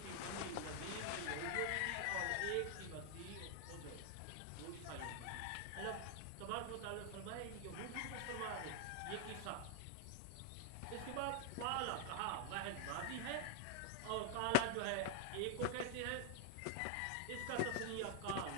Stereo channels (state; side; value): different; both; correlation 0.00